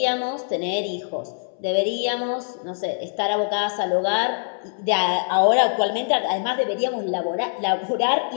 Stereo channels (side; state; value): right; silent; 63 dB below the other